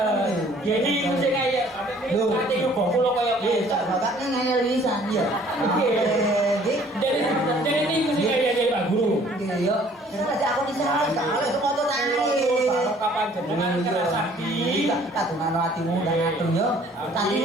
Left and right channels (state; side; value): normal; both; correlation 0.56